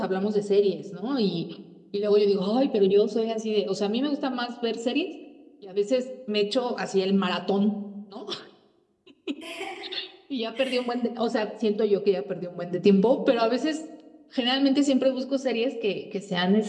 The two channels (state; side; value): identical; both; correlation 1.00